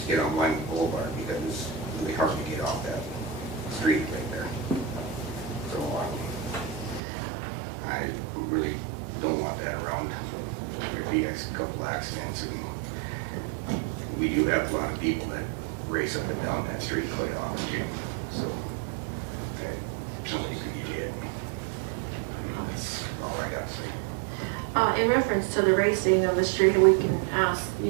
to get on Wyoming Boulevard because it's really hard to get off that street right there. So I really don't want that around. There'd be a couple accidents, and we do have a lot of people that race up and down that street quite often too. So somebody could get hit. That's all I got to say. In reference to the racing of the street, we can ask,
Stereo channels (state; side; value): drops out; left; at 7.0 s